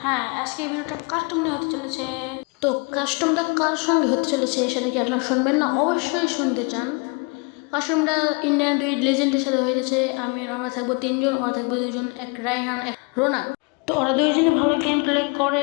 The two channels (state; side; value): quieter; right; 31.2 dB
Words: হ্যাঁ, আজকে এই ভিডিওটা কাস্টম নিয়ে হতে চলেছে। তো কাস্টমটা কার সঙ্গে হতে চলেছে সেটা কি আপনারা শুনবেন না? অবশ্যই শুনতে চান। কাস্টমটা ইন্ডিয়ান দুই লেজেন্ডের সাথে হয়ে গেছে। আমরা থাকবো তিনজন, ওরা থাকবো দুজন, এক রায়হান এক রোনাক। তো ওরা দুইজনে ভালো গেম প্লে